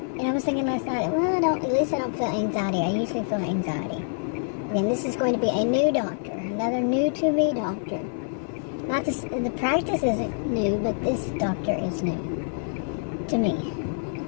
I was thinking last night, well, at least I don't feel anxiety. I usually feel anxiety. Again, this is going to be a new doctor. Another new to me doctor. Not this, the practice isn't new, but this doctor is new to me.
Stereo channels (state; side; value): silent; right; 61 dB below the other